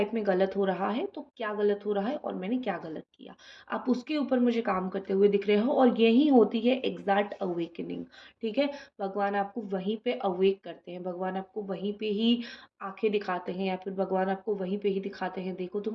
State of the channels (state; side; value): identical; both; correlation 1.00